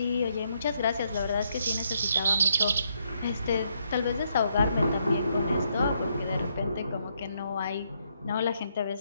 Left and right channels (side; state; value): both; inverted; correlation -0.75